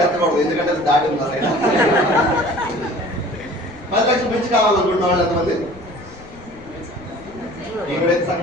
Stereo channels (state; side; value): noise; left; rumble, 21 dB below the sound